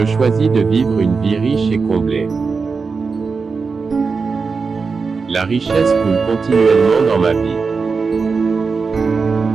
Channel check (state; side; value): quieter; left; 4.8 dB